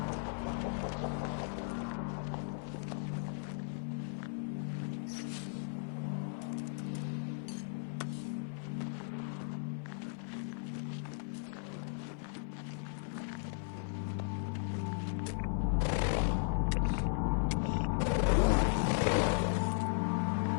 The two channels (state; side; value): silent; right; 53 dB below the other